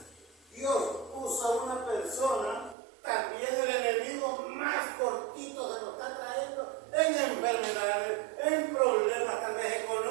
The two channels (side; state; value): left; drops out; at 2.8 s